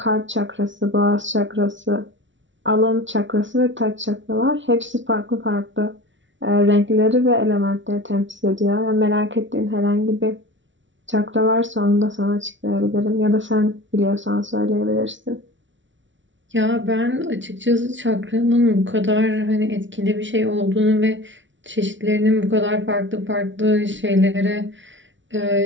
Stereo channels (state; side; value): late; left; 0.55 ms